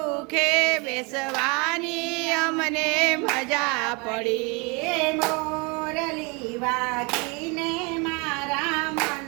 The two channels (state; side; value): quieter; left; 30.0 dB